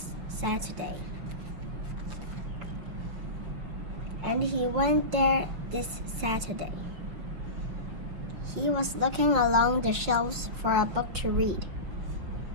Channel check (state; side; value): late; left; 5.9 ms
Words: Saturday. And he went there this Saturday. He was looking along the shelves for a book to read